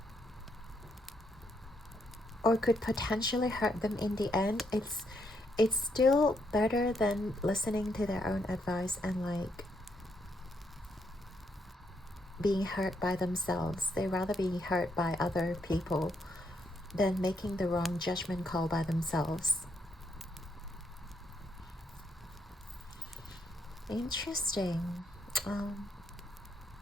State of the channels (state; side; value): normal; both; correlation 0.76